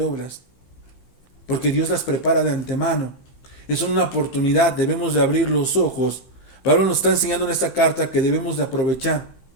porque Dios las prepara de antemano. Es una oportunidad, debemos de abrir los ojos. Pablo nos está enseñando en esta carta que debemos de aprovechar.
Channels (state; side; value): late; right; 15 ms